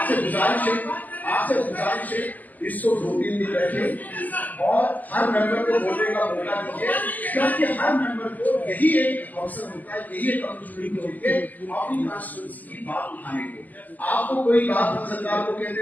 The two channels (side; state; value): right; late; 0.081 ms